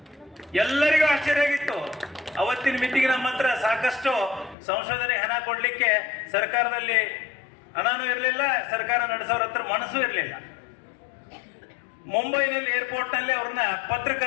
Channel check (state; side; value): drops out; right; at 4.5 s